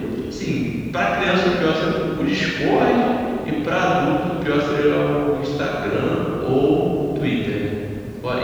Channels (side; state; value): both; identical; correlation 1.00